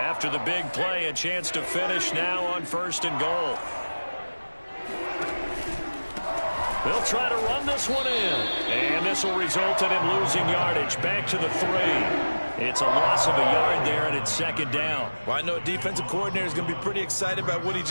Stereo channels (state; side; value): inverted; both; correlation -1.00